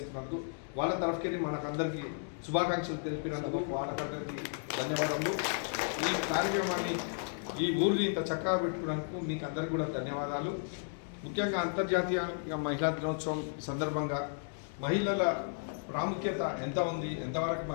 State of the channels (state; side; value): silent; right; digital silence